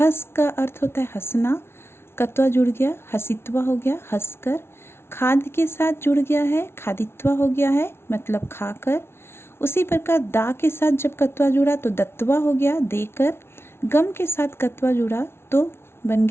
का अर्थ होता है हंसना, कत्वा जुड़ गया हसित्वा हो गया हंसकर। खाद के साथ जुड़ गया है, खादित्वा हो गया है, मतलब खाकर। उसी प्रकार दा के साथ जब कत्वा जुड़ा तो दत्वा हो गया देकर। गम के साथ कत्वा जुड़ा तो बन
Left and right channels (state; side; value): late; right; 0.12 ms